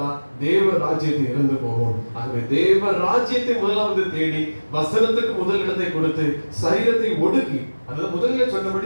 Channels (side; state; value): both; inverted; correlation -1.00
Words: தேவ ராஜ்யத்தை இழந்து போவோம். ஆகவே தேவ ராஜ்யத்தை முதலாவது தேடி வசனத்துக்கு முதல் இடத்தை கொடுத்து சரீரத்தை ஒடுக்கி, அதாவது முதலில்